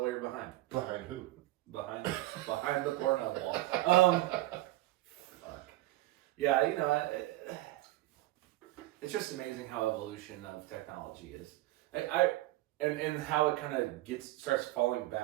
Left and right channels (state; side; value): quieter; left; 17.3 dB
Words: while you're behind. Behind who? Behind the Pornhub wall. Fuck. Yeah, it's just amazing how evolution of technology is. And how it kind of starts falling